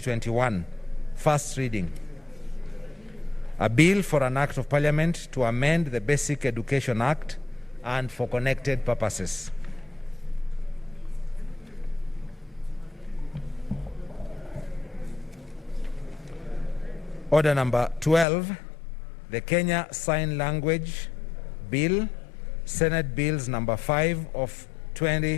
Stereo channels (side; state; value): right; drops out; at 18.2 s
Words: first reading. A bill for an act of parliament to amend the Basic Education Act and for connected purposes. Order number 12, the Kenya Sign Language Bill, Senate Bills number 5 of